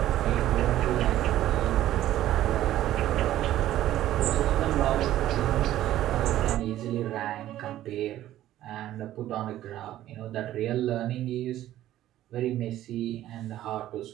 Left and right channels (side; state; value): left; quieter; 13.5 dB